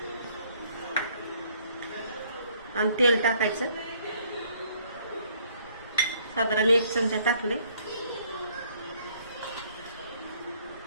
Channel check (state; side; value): inverted; both; correlation -0.63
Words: आणि तेल टाकायचं. साधारण 1 चमचा टाकले.